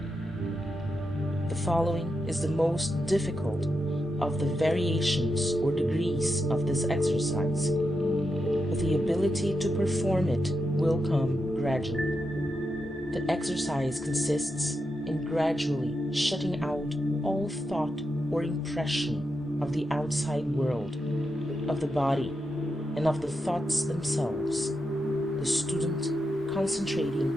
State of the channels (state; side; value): normal; both; correlation 0.86